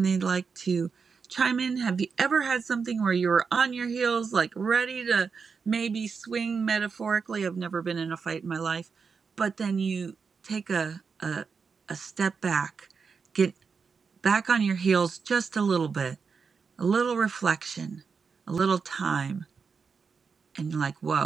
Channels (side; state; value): left; quieter; 5.5 dB